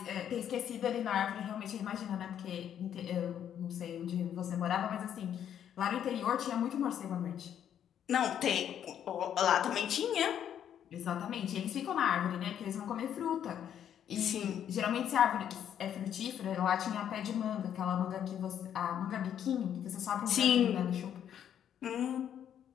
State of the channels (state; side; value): quieter; right; 9.6 dB